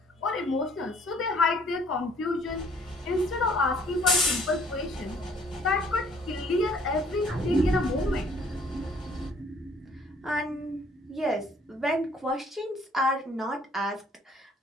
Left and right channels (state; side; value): normal; both; correlation 0.59